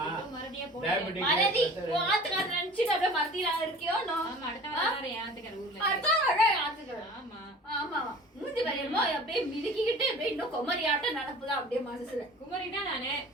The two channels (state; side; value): normal; both; correlation 0.43